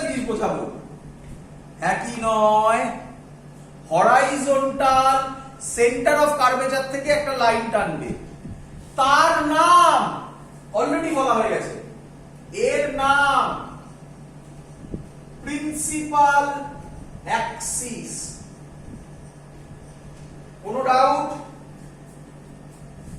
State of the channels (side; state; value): both; identical; correlation 1.00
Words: জিনিস বোঝাবো, একই নয়। হরাইজন্টাল সেন্টার অফ কার্ভেচার থেকে একটা লাইন টানবে, তার নাম অলরেডি বলা হয়ে গেছে, এর নাম প্রিন্সিপাল অ্যাক্সিস। কোনো ডাউট?